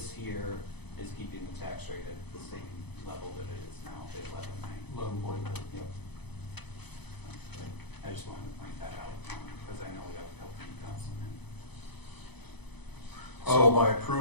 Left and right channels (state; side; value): late; right; 0.98 ms